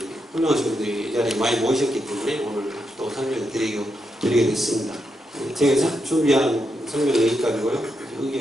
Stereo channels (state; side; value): normal; both; correlation 0.83